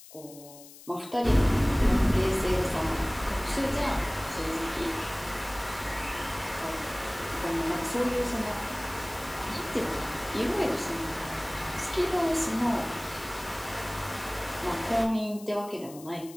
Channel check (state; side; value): noise; left; hiss, 19 dB below the sound